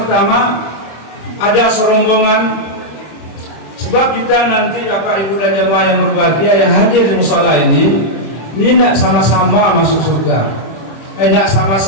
ada serombongan, sebab kita nanti Bapak Ibu dan jemaah yang berbahagia yang hadir di musala ini tidak sama-sama masuk surga, tidak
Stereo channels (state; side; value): late; right; 25 ms